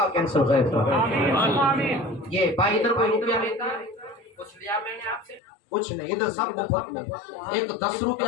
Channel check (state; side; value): drops out; right; at 5.4 s